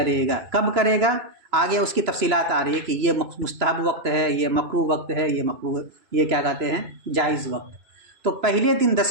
گا. کب کرے گا؟ آگے اس کی تفصیلات آ رہی ہے کہ یہ مستحب وقت ہے، یہ مکروہ وقت ہے، یہ کیا کہتے ہیں؟ جائز وقت. تو پہلے دن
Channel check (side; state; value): left; late; 2.9 ms